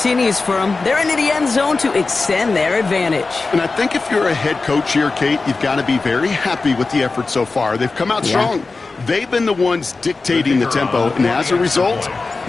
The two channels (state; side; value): quieter; right; 3.8 dB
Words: for them. They're into the end zone to extend their advantage. And I think if you're a head coach here, Kate, you've got to be very happy with the effort so far. They've come out strong. They've been the ones dictating the tempo, and as a result,